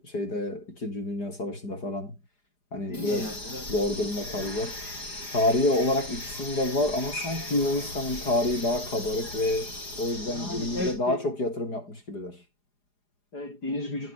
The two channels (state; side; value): late; right; 4.9 ms